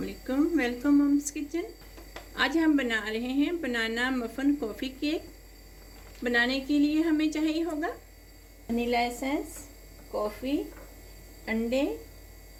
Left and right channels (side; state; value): both; identical; correlation 1.00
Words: Welcome mom's kitchen. आज हम बना रहे हैं बनाना मफ़न कॉफ़ी केक। बनाने के लिए हमें चाहिए होगा वनीला एसेंस, कॉफ़ी, अंडे,